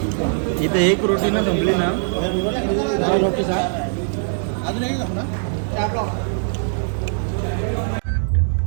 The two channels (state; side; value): silent; left; digital silence